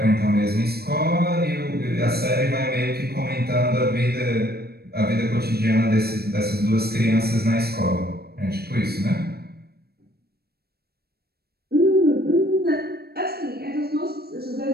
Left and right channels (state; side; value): late; left; 0.46 ms